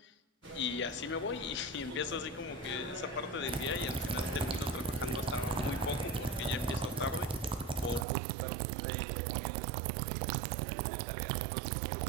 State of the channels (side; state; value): left; drops out; at 8.1 s